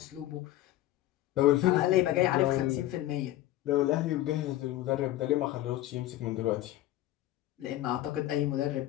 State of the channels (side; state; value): right; quieter; 14.8 dB